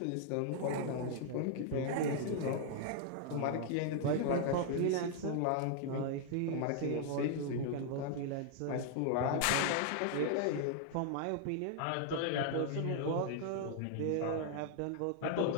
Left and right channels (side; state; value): both; different; correlation 0.00